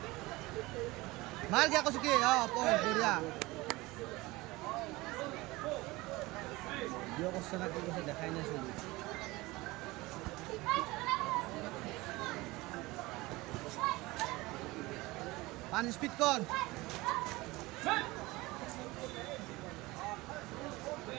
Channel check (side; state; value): left; quieter; 21.2 dB